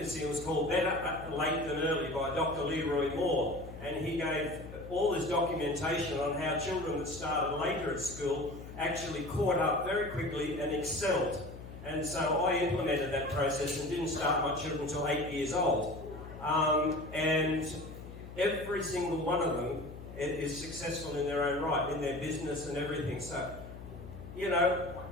It was called Better Late Than Early by Dr. Leroy Moore, and he gave all this documentation on how children that started later at school actually caught up very quickly and excelled. And so I implemented that process and didn't start my children until 8 years old. And every single one of them is successful in their own right, in their business and everything. So, you know,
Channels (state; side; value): noise; left; hum, 13 dB below the sound